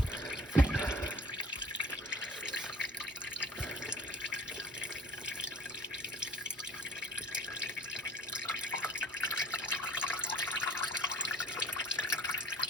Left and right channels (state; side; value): normal; both; correlation 0.49